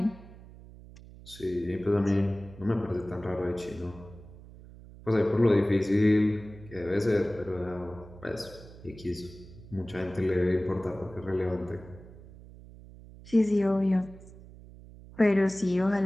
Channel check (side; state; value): right; noise; hum, 18 dB below the sound